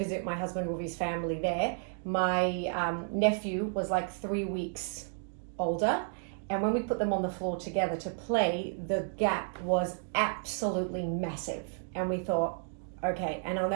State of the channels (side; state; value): left; silent; 56 dB below the other